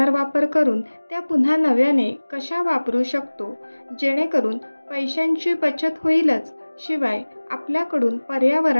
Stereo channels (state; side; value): inverted; both; correlation -1.00